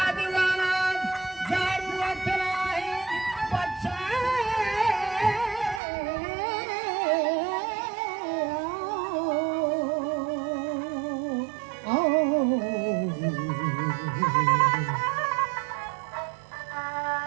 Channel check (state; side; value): drops out; left; at 5.8 s